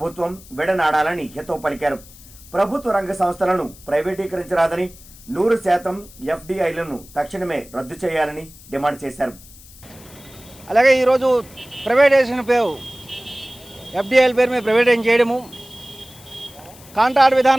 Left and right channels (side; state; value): left; noise; hiss, 21 dB below the sound